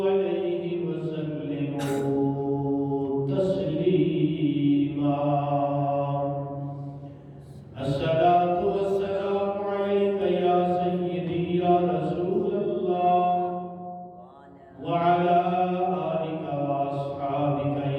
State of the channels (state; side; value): identical; both; correlation 1.00